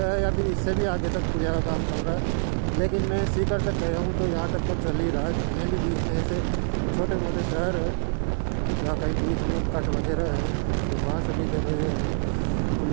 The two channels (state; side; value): silent; left; digital silence